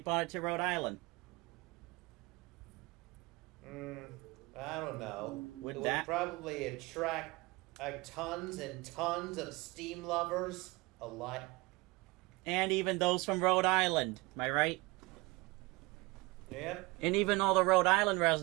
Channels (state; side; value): quieter; left; 23.7 dB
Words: it to Rhode Island? I don't know. Would it that- would probably attract tons and tons of steam lovers alike. And even those from Rhode Island. Am I right? Yep. And even all the Rhode Island